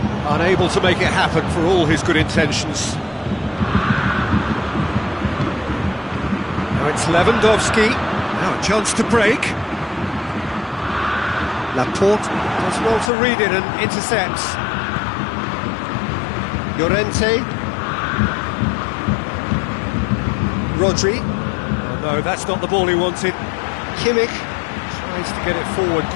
unable to make it happen for all his good intentions. Now it's Lewandowski. Now a chance to break. Laporte does well to read it and intercepts. Llorente. Rodri. Oh no, that's not the ball he wanted. Kimmich tries to get it forward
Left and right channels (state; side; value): drops out; right; at 13.1 s